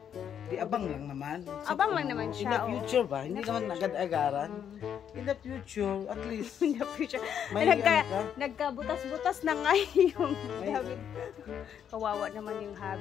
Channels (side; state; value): right; quieter; 8.7 dB